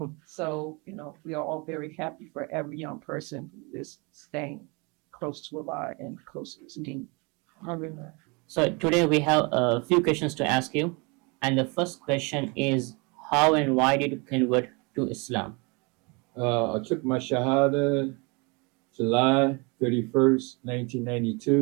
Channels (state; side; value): quieter; left; 29.7 dB